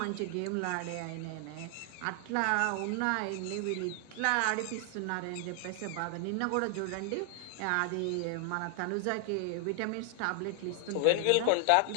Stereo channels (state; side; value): different; both; correlation 0.00